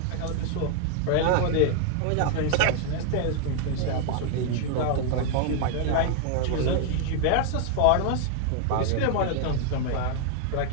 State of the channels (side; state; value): both; different; correlation 0.00